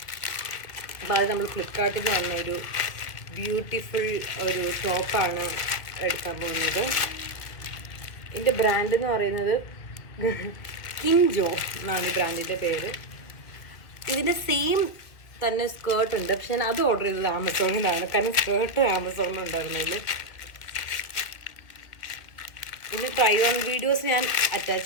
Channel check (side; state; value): right; late; 2.2 ms